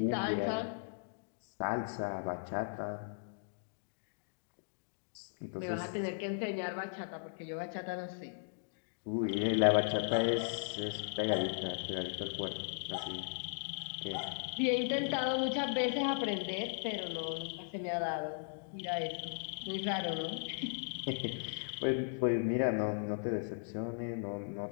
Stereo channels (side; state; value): right; silent; digital silence